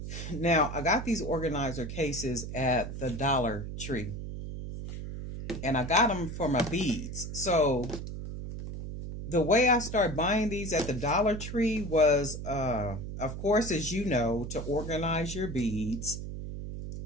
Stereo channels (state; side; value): noise; right; hum, 7 dB below the sound